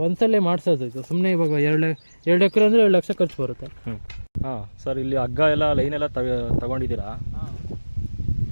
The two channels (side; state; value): both; inverted; correlation -1.00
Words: ಒಂದ್ಸಲ ಮಾಡ್ಸೋದು. ಇದು ಸುಮ್ಮನೆ ಇವಾಗ 2 ಎಕರೆ ಅಂದ್ರೆ 2 ಲಕ್ಷ ಖರ್ಚು ಬರುತ್ತೆ. ಸರ್ ಇಲ್ಲಿ ಹಗ್ಗ ಎಲ್ಲ ಲೈನ್ ಎಲ್ಲ ತಗೊಂಡಿದ್ದೀರಾ?